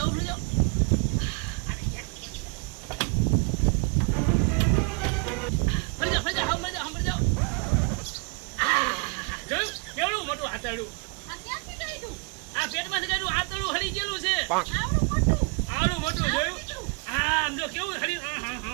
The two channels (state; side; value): quieter; left; 32.1 dB